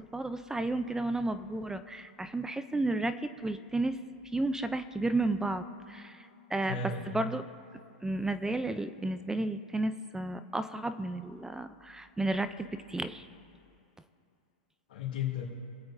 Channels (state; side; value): normal; both; correlation 0.80